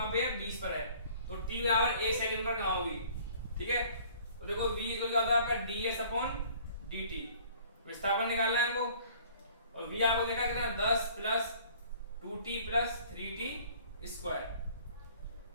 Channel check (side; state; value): both; inverted; correlation -0.53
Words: पे है 20 पर है, तो t बराबर 1 सेकंड पर कहां होगी। ठीक है, तो देखो v इक्वल क्या होता है आपका ds/dt, विस्थापन निकालना है हमको, और v आपको देखा कितना 10 + 2t + 3t स्क्वायर।